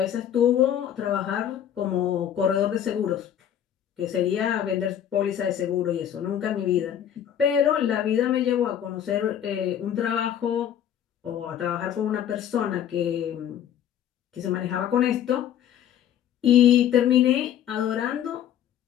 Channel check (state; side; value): quieter; right; 10.1 dB